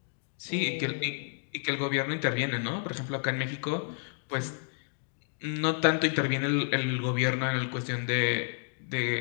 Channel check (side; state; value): right; silent; 57 dB below the other